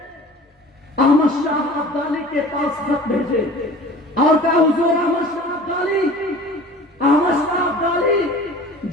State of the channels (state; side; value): normal; both; correlation 0.42